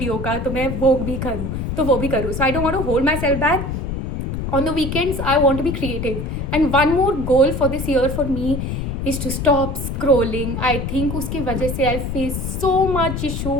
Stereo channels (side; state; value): left; noise; rumble, 4 dB below the sound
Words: का, तो मैं वो भी करूँ, तो वो भी करूँ. So I don't want to hold myself back. On the weekends, I want to be creative. And one more goal for this year for me is to stop scrolling. I think उसकी वजह से I face so much issue.